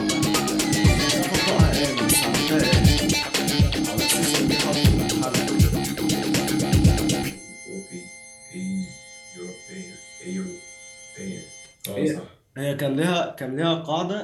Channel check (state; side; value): identical; both; correlation 1.00